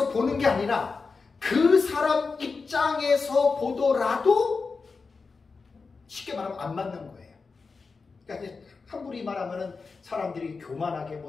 보는 게 아니라 그 사람 입장에서 보더라도 쉽게 말하면 안 맞는 거예요. 그러니까 함부로 말하면은 사람들이 교만하게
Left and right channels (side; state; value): right; quieter; 4.5 dB